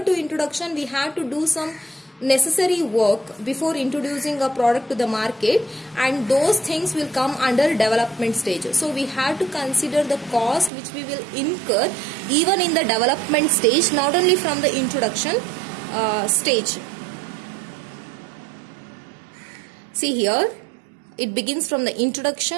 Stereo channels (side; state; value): left; drops out; at 10.7 s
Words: to introduction we have to do some necessary work before introducing a product to the market, and those things will come under development stage. So we have to consider the cost which we will incur even in the development stage, not only from the introduction stage. See here, it begins from the